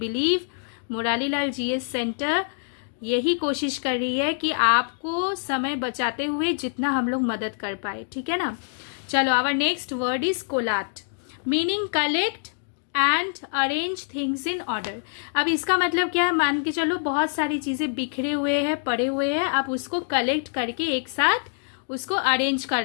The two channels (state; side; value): silent; right; digital silence